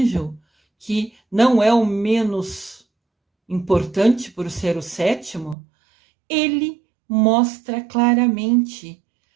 que não é o menos importante por ser o 7º, ele mostra claramente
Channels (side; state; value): left; drops out; at 5.6 s